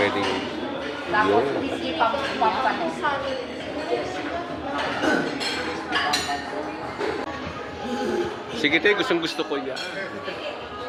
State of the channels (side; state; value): both; identical; correlation 1.00